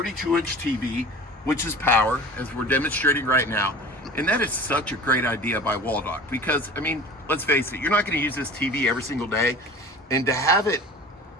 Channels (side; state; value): both; normal; correlation 0.40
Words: TV, which is power, as we're demonstrating right now. And that is such a great idea by Waldoch, because, I mean, let's face it, you're not gonna use this TV every single day, and to have it